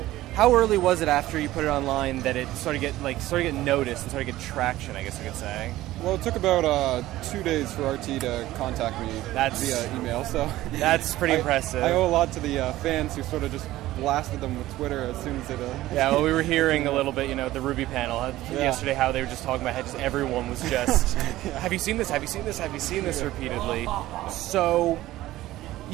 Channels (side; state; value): left; quieter; 15.9 dB